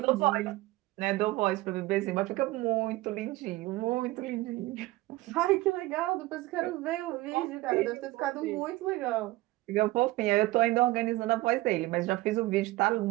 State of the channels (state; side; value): quieter; left; 19.0 dB